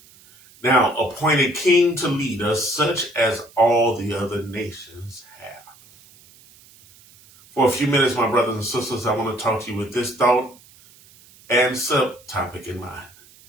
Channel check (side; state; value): right; noise; hiss, 26 dB below the sound